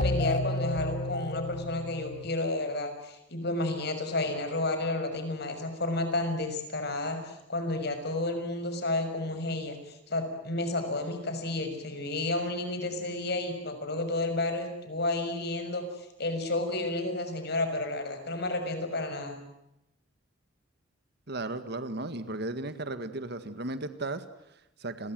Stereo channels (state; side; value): normal; both; correlation -0.05